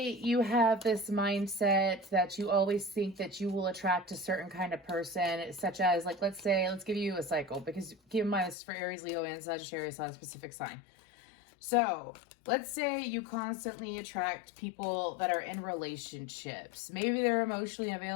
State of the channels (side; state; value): right; drops out; at 8.6 s